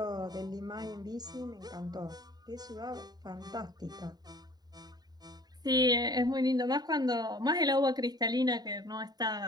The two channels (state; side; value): late; left; 0.20 ms